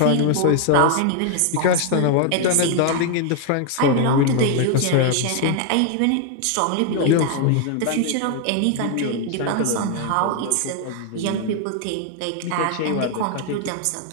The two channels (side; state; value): both; different; correlation 0.00